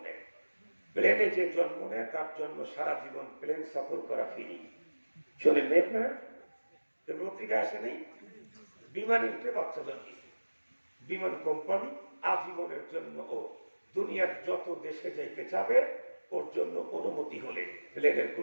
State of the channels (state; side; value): inverted; both; correlation -1.00